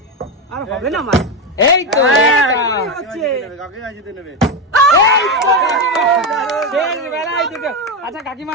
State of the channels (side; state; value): both; normal; correlation 0.11